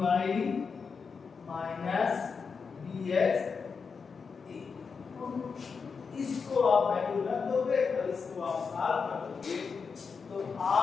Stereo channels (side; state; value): right; quieter; 5.4 dB